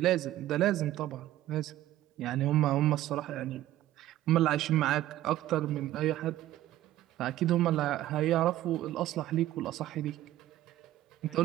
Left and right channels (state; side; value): quieter; left; 14.1 dB